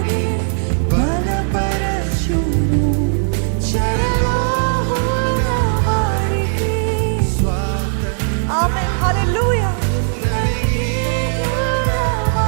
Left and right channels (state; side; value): silent; left; digital silence